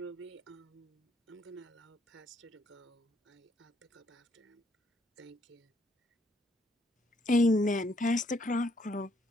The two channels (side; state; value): both; normal; correlation 0.71